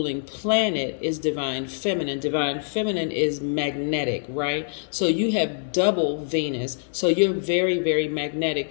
planet is divine feminine. Divine feminine is magnetic, right? So you have double Venus. So you're very, very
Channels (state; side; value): silent; right; digital silence